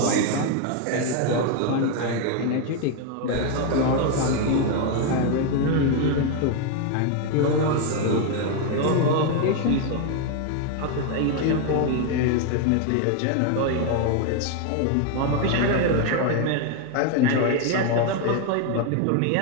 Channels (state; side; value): different; both; correlation 0.01